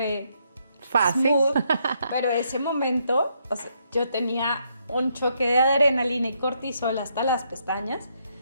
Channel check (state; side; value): inverted; both; correlation -0.75